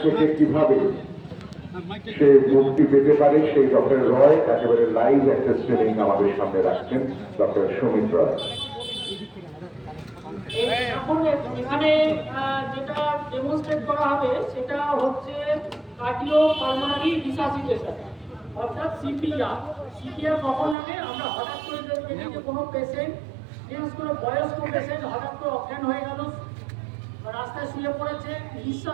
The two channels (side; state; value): left; drops out; at 20.8 s